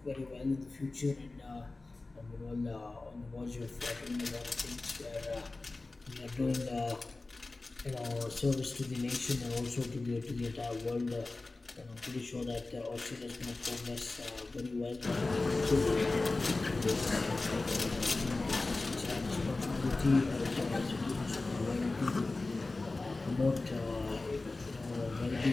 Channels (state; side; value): quieter; right; 3.3 dB